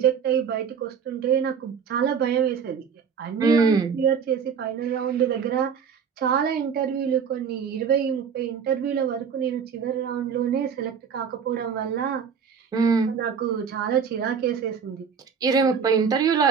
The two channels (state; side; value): quieter; left; 6.7 dB